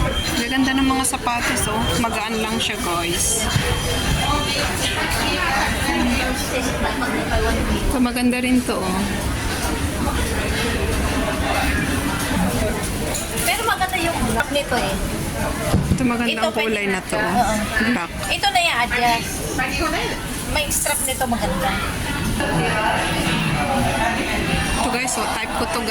Gaganda ng mga sapatos oh. Magaan lang siya guys. Ito maganda rin to oh. Pero maganda yung black nito eh. Ito magandang kulay na to. Black. Ito na yung adjust. May strap nito maganda. Ito guys oh. Type ko to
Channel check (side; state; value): both; identical; correlation 1.00